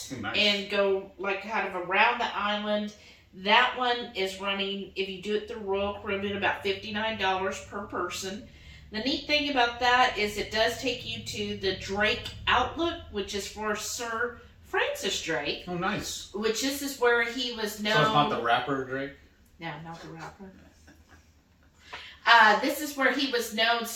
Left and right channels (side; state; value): both; identical; correlation 1.00